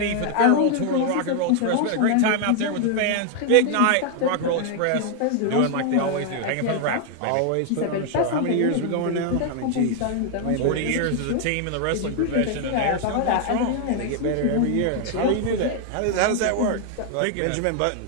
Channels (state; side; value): different; both; correlation 0.00